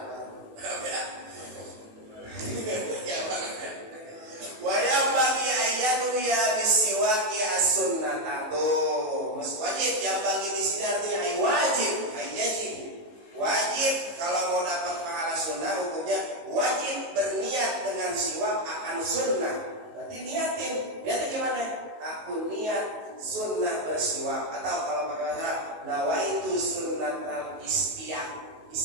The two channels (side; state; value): left; late; 19 ms